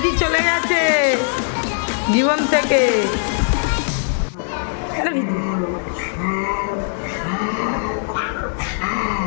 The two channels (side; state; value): right; silent; 66 dB below the other